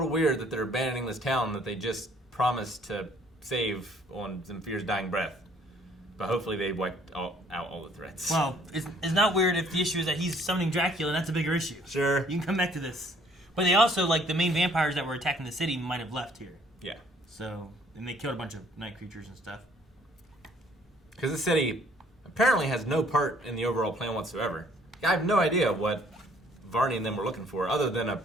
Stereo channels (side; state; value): both; normal; correlation 0.60